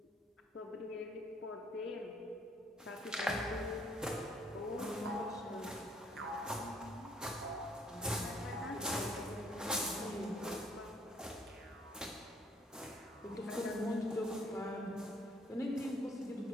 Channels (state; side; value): normal; both; correlation 0.64